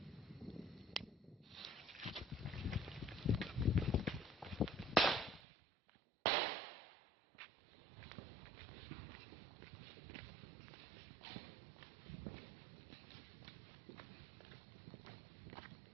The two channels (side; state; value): left; drops out; at 5.4 s